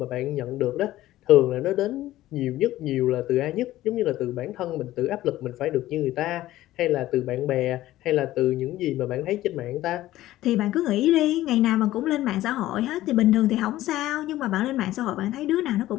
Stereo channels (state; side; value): quieter; right; 15.2 dB